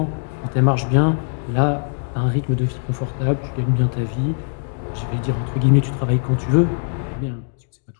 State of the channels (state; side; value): silent; right; digital silence